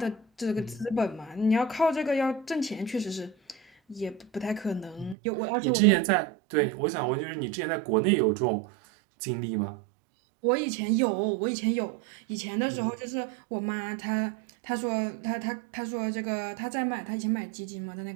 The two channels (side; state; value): left; drops out; at 5.2 s